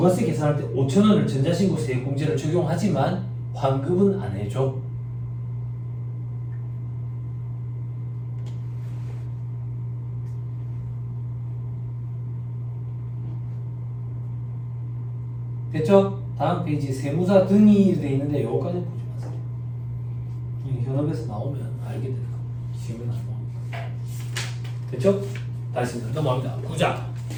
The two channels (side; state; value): both; identical; correlation 1.00